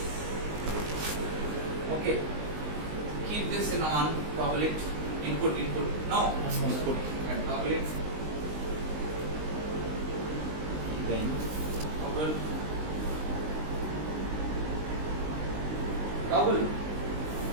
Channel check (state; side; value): late; left; 19 ms